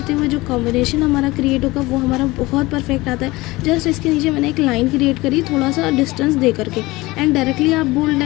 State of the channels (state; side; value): quieter; right; 20.7 dB